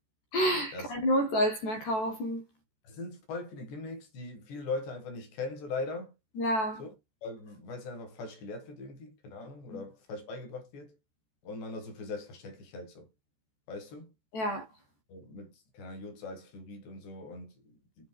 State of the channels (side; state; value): right; late; 14 ms